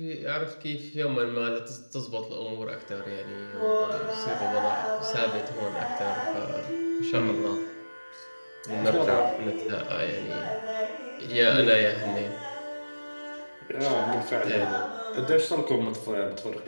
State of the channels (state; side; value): inverted; both; correlation -1.00